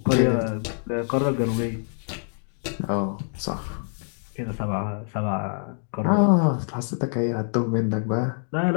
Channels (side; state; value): right; silent; 60 dB below the other